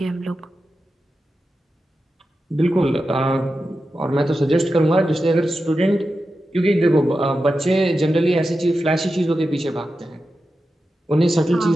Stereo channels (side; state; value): both; normal; correlation 0.91